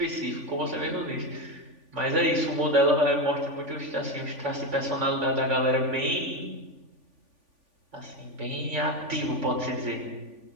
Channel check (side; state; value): left; late; 3.5 ms